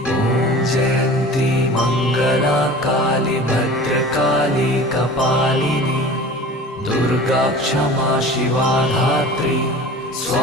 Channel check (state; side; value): normal; both; correlation 0.39